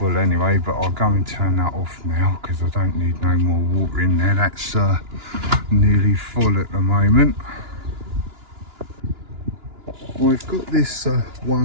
anyway, but I'll go and turn that off now because I don't need no more water in there. That's nearly full at the moment. I've got this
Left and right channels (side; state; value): left; late; 2.9 ms